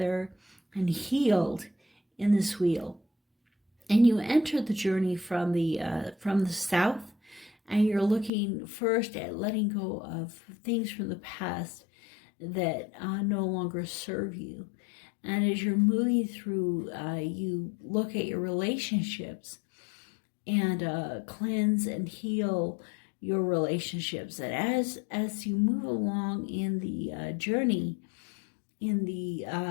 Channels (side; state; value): right; drops out; at 8.3 s